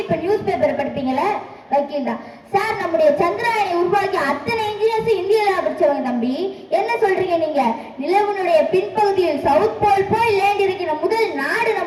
இப்ப நியூஸ் பேப்பர் படிப்பீங்களா? வக்கீல் தான் சார். நம்முடைய சந்திராயனை உருவாக்கி அத்தனை இன்ஜினியர்ஸ் இந்தியாவில படிச்சவங்க தம்பி. என்ன சொல்றீங்க நீங்க? நிலவனுடைய பின்பகுதியில் சவுத் போல் போய் லேண்ட் இருக்கிற முதல் நாடு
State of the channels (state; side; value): identical; both; correlation 1.00